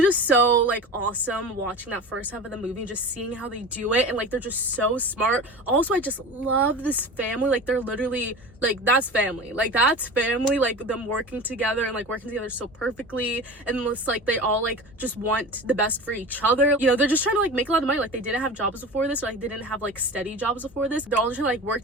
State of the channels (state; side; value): normal; both; correlation 0.32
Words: just so like awesome watching that first half of the movie and just seeing how they do it, and like they're just so smart. Also, I just love this family. Like they're literally like, that's family, like them working together and like working together so perfectly, and it's like they all like just want the best for each other. You know, they're just trying to like make a lot of money. Like they didn't have jobs before this, or like they didn't have like steady jobs before this. They're all just trying to like